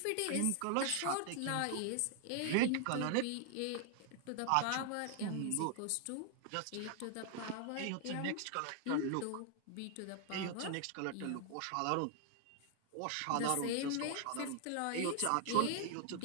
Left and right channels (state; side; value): different; both; correlation 0.00